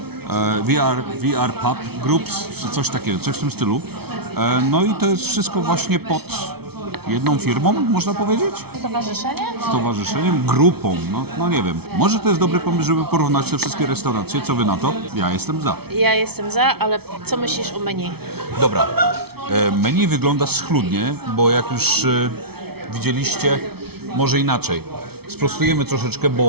VR Pub Groups, czy coś takiego, coś w tym stylu. No i to jest wszystko właśnie pod jedną firmą, można powiedzieć? Stowarzyszenie? Stowarzyszeniem, grupą, no nie wiem. Może to jest dobry pomysł, żeby porównać te wszystkie restauracje. Co wy na to? Ja jestem za. Ja jestem za, ale co myślisz o menu? Dobra. Menu wygląda schludnie, bo jak już widzieliście, może inaczej. Sprostujemy troszeczkę,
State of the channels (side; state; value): left; late; 0.96 ms